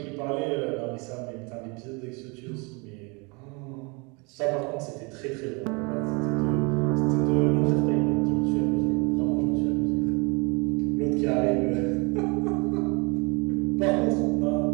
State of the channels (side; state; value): left; quieter; 30.1 dB